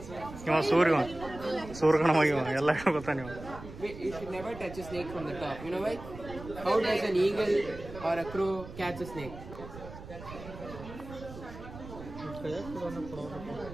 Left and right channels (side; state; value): right; noise; rumble, 13 dB below the sound